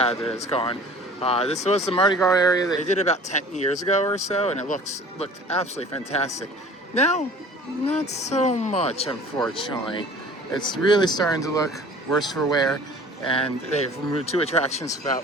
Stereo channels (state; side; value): normal; both; correlation 0.47